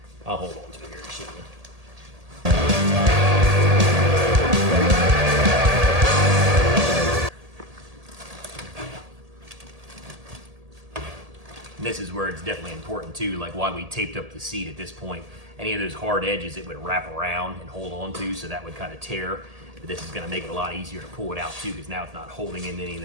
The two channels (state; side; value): late; left; 1.8 ms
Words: I'll hold on to it here and show you. This is where it's definitely important too, like why we taped up the seat at this point. Any of those hard edges it would wrap around and hold on to, so that would kind of tear. But this is going to make it a lot easier to pull it out too, because now it's not holding in any of